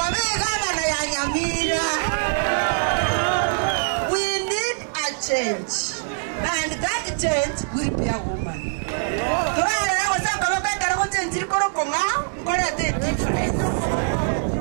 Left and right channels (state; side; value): silent; left; digital silence